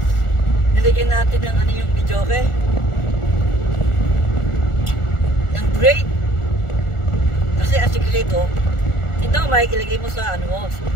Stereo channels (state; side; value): late; right; 1.4 ms